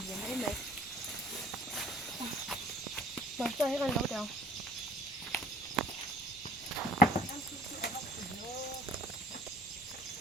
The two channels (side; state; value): both; normal; correlation 0.54